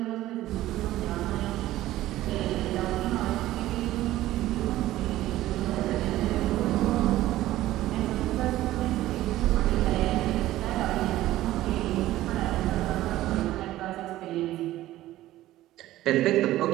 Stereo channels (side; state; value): left; quieter; 15.2 dB